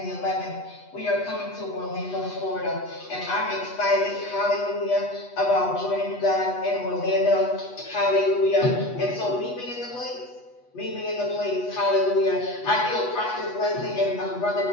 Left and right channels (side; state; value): right; late; 8.2 ms